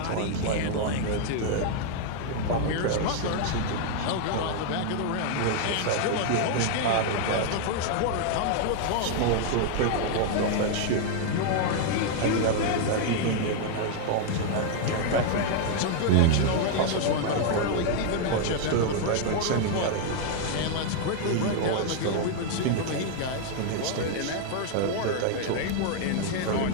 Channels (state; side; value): different; both; correlation 0.00